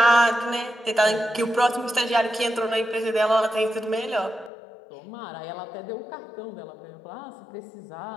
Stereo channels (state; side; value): drops out; right; at 4.5 s